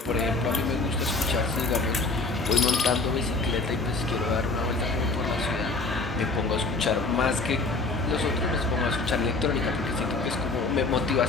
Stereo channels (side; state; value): right; quieter; 3.6 dB